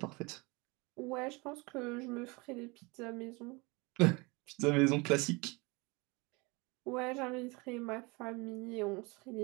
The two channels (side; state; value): left; quieter; 26.4 dB